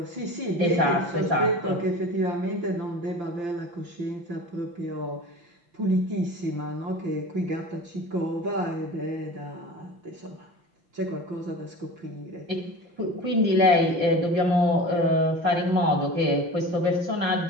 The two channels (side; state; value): left; late; 5.8 ms